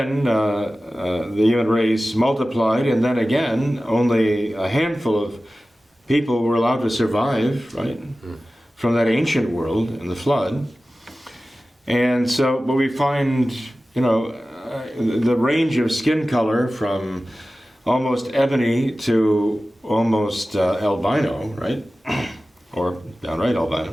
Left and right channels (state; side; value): normal; both; correlation 0.96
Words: the human race multiplied, and then again only a handful of people were allowed to survive, right, from that ancient world in the flood. And so, but we find, the range of skin color from almost ebony to almost albino, right, or downright